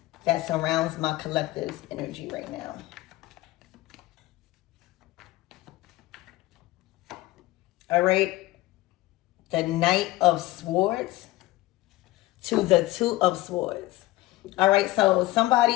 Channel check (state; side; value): quieter; right; 18.0 dB